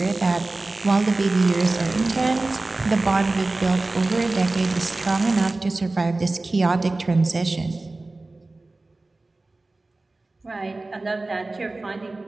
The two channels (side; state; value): left; quieter; 3.1 dB